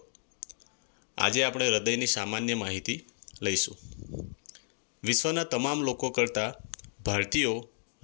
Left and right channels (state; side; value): silent; right; digital silence